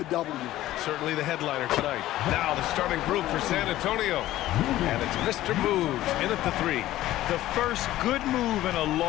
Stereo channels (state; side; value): quieter; right; 14.9 dB